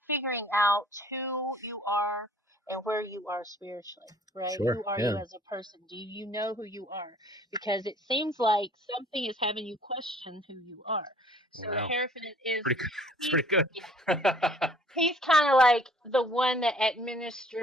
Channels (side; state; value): both; normal; correlation 0.56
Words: figuring out who you are and where you are spiritually, right? Sure, Who are you as a person? Do you know who you are? Because it seems like something is having you question who you are. So the Hierophant is it's pretty good. Yeah. He's kind of like the one that